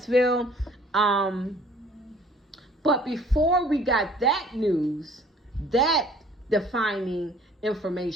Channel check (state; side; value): normal; both; correlation 0.54